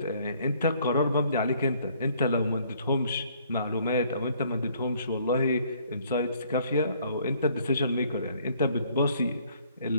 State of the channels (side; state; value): both; inverted; correlation -0.62